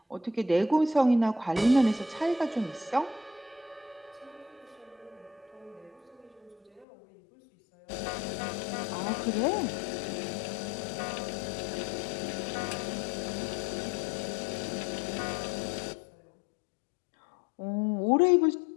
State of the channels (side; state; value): right; drops out; at 6.9 s